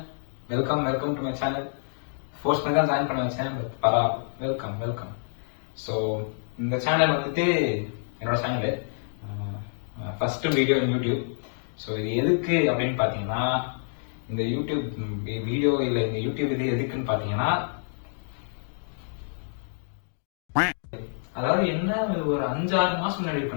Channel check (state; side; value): silent; right; digital silence